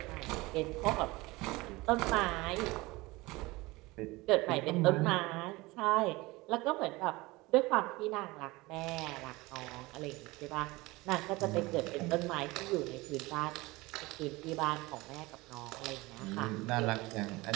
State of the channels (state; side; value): quieter; left; 21.8 dB